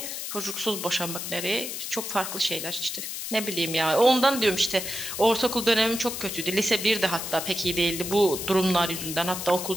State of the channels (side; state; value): left; noise; hiss, 6 dB below the sound